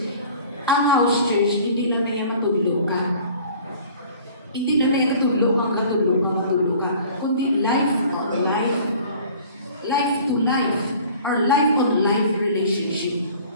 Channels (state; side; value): inverted; both; correlation -0.49